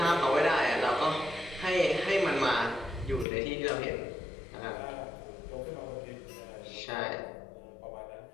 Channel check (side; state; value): right; drops out; at 3.2 s